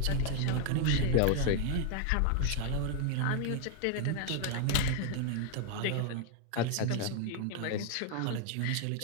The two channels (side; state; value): both; different; correlation 0.00